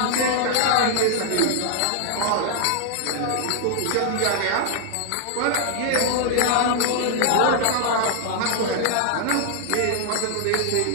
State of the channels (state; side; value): different; both; correlation -0.01